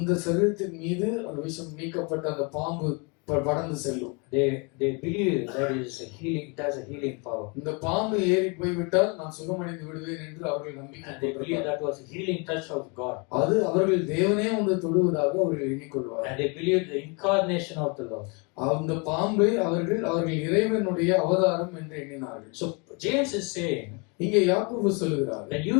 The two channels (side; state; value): right; quieter; 32.2 dB